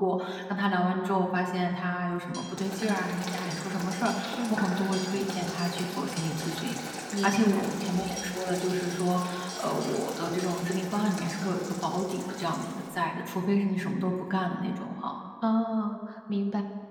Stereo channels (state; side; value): identical; both; correlation 1.00